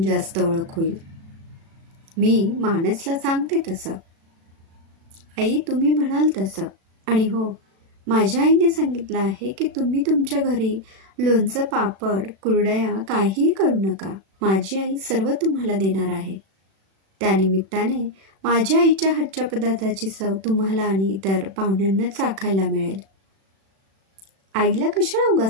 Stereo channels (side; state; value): left; late; 36 ms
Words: जास्त ओळख होईल. मी मानसला सांगते तसं. आई, तुम्ही म्हणाल तसं. आणि हो, माझ्या आईने सांगितलं आहे की तुम्ही तुमच्या घरी लोणचं, पापड, कुरडया काहीही करू नका. माझी आई सर्व तुम्हाला देणार आहे. त्यानिमित्ताने माझ्या आईच्या हातच्या पदार्थाची चव तुम्हाला आणि इतर पाहुण्यांना चाखायला मिळेल. आईला कशाला